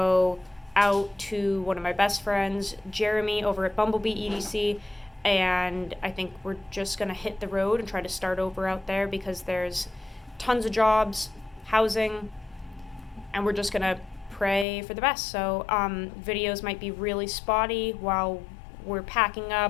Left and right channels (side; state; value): right; drops out; at 14.7 s